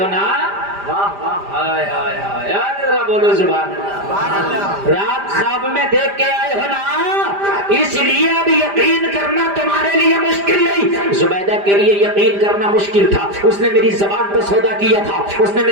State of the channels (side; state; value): left; late; 5.0 ms